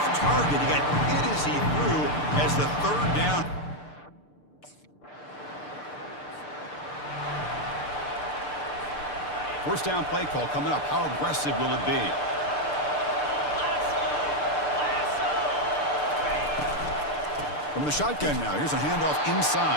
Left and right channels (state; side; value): late; right; 6.8 ms